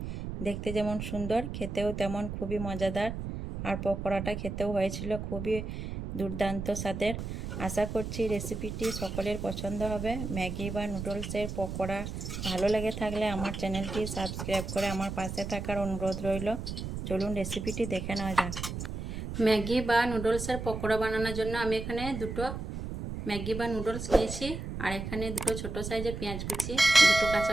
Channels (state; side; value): noise; right; rumble, 6 dB below the sound